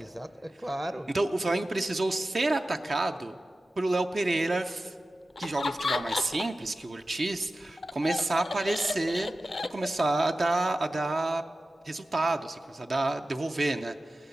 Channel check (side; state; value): both; normal; correlation 0.94